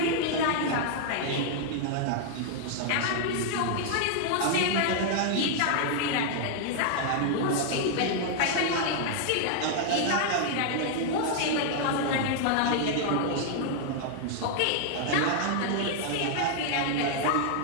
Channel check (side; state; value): both; different; correlation -0.01